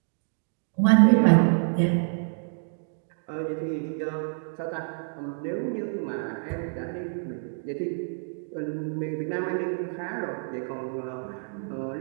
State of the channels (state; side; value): silent; left; digital silence